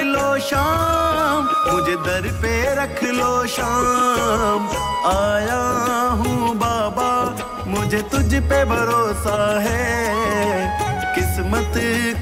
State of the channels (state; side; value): identical; both; correlation 1.00